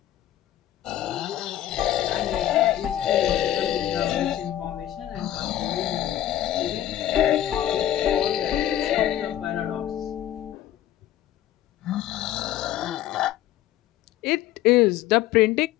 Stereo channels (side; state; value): right; quieter; 12.4 dB